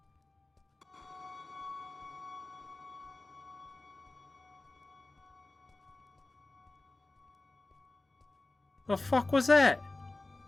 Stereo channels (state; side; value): quieter; right; 3.1 dB